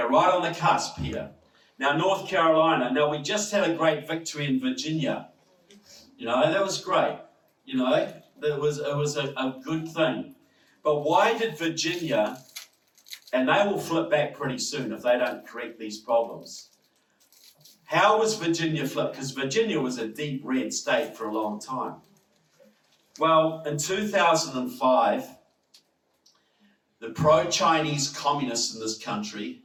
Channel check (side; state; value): both; identical; correlation 1.00